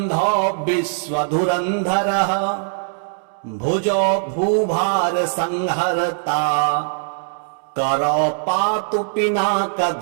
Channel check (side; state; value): left; silent; digital silence